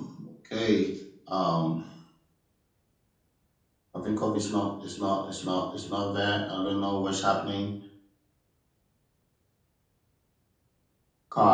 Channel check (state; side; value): identical; both; correlation 1.00